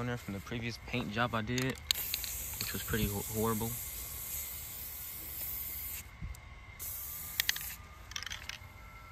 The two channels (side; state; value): both; identical; correlation 1.00